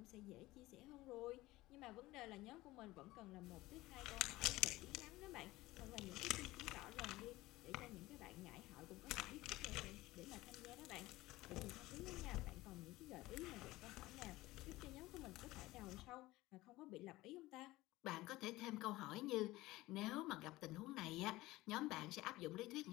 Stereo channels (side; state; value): right; quieter; 18.6 dB